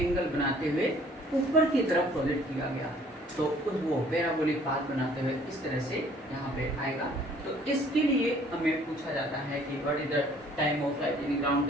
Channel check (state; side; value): normal; both; correlation 0.57